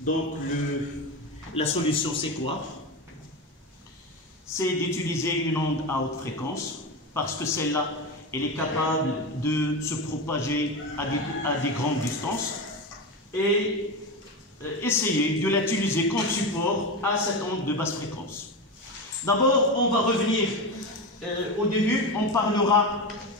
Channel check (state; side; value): normal; both; correlation 0.20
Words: la solution, c'est quoi? C'est d'utiliser une onde à haute fréquence, parce que celle-là, elle est capable de se propager à des grandes distances, et essayer de l'utiliser comme support à cette onde de basse fréquence. D'abord, on va revenir au début, on parlera